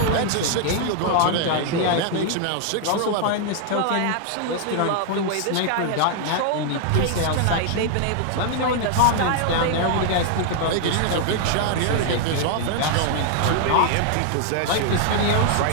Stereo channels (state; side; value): different; both; correlation 0.00